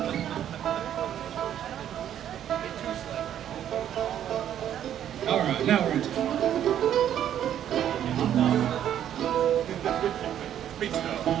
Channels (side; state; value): left; quieter; 10.4 dB